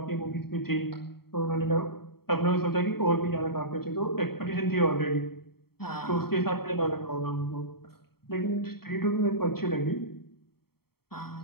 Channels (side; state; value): right; late; 0.95 ms